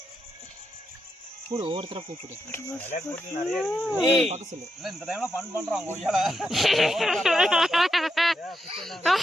கூடு ஒவ்வொருத்தர கூப்பிடு பார்க்க சொல்லு. இல்ல இந்த டைம்ல ஃபன் பண்றோம் கொய்யால.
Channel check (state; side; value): normal; both; correlation 0.84